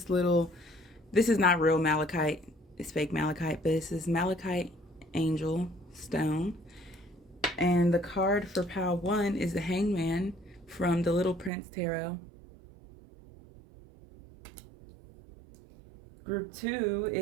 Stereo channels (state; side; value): drops out; left; at 11.5 s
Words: is not real malachite, it's fake malachite, but this is malachite angel stone. And the card for pile 1 is the Hangman from the Little Prince Tarot. Group 2